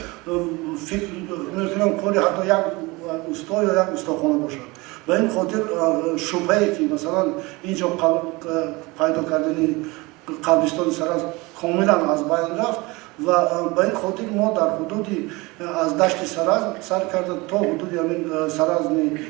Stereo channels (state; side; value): quieter; left; 23.8 dB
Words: فکر میکنم کاری حتی یک استا یا یک استاخانه باشد. به این خاطر شبهه‌ای که مثلا اینجا پیدا کردن قبرستان سرز کاملا از بین رفت و به این خاطر ما در حدودی از دشت سرز سر کرده تا حدودی همین سرز